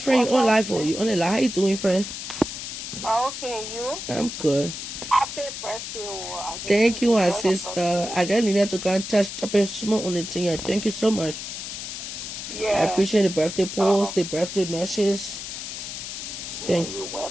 you on live for you on the live. How you doing, friend? Okay, you? I'm good. Happy birthday. Thank you, my sister. I just needed to go and touch up a small on the thing. Yeah, thank you so much. Yeah. I appreciate the birthday post, the birthday messages. Thank you.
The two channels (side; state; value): left; noise; hiss, 7 dB below the sound